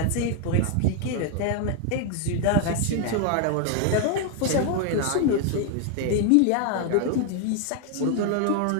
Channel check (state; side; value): different; both; correlation 0.00